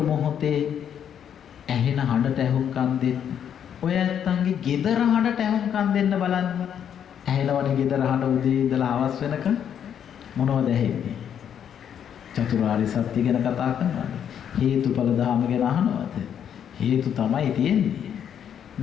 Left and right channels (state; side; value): quieter; right; 8.8 dB